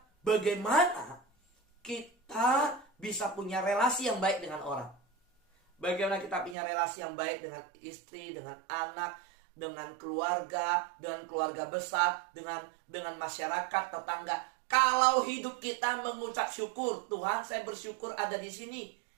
bagaimana kita bisa punya relasi yang baik dengan orang? Bagaimana kita punya relasi yang baik dengan istri, dengan anak, dengan keluarga besar, dengan masyarakat, tetangga. Kalau hidup kita mengucap syukur, Tuhan saya bersyukur ada di sini,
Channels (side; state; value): left; drops out; at 6.6 s